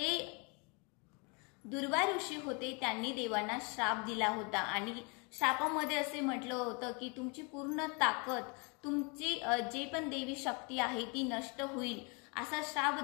दुर्वा ऋषी होते त्यांनी देवांना श्राप दिला होता आणि श्रापामध्ये असे म्हटलं होतं की तुमची पूर्ण ताकद, तुमची जे पण देवी शक्ती आहे ती नष्ट होईल असा श्राप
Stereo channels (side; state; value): right; quieter; 32.5 dB